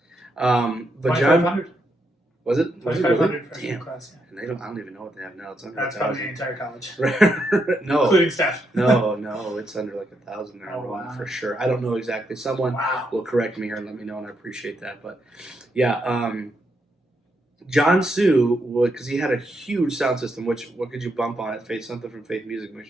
But John, was it? 2,500 freshman class. Yeah. And I don't even know what they have now. It's under That's probably the entire college. No, including staff. no, it's under like 1,000 enrollment for sure. I don't know exactly. Someone will correct me here and let me know, and I appreciate that. But yeah, John Sue would, because he had a huge sound system. Which what could you bump on it? Something from Faith Music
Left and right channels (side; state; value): both; normal; correlation 0.80